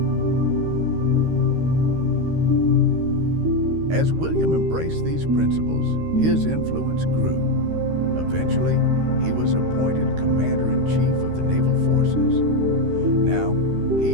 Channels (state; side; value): late; left; 13 ms